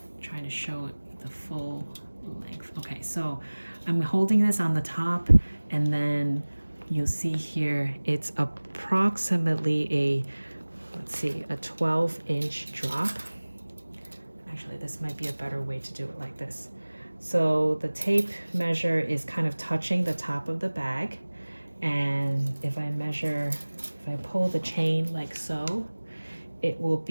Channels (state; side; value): inverted; both; correlation -1.00